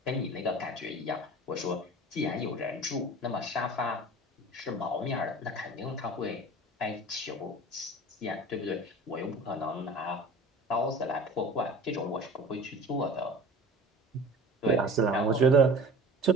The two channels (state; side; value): normal; both; correlation 0.40